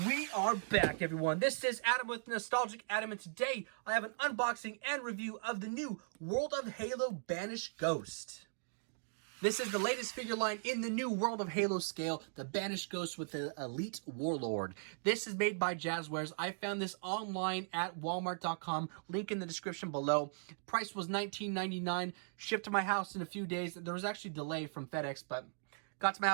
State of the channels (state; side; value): silent; left; digital silence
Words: we are back, everyone. This is Adam with Nostalgic Adam, and today I have an unboxing and review of the new World of Halo Banished Ghost. This is the latest figure line in the new World of Halo scale, the Banished Ghost with the Elite Warlord. This is made by Jazzwares. I found this online at walmart.com, link in the description below. Price was $19.99, shipped to my house in a few days. There was actually a delay from FedEx, but got to my